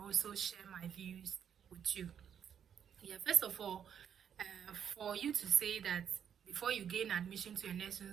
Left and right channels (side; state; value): left; quieter; 8.5 dB